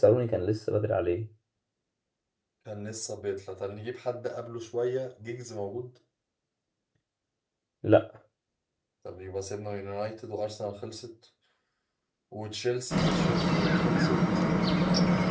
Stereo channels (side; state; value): both; identical; correlation 1.00